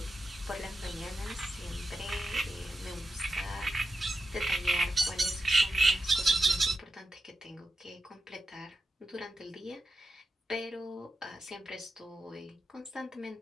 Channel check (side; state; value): both; normal; correlation 0.89